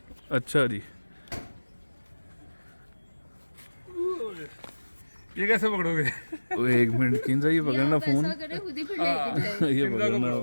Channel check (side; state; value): both; inverted; correlation -1.00